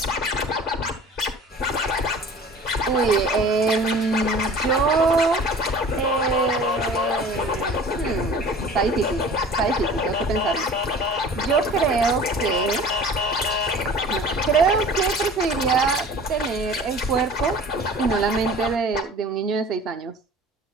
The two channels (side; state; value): both; normal; correlation 0.43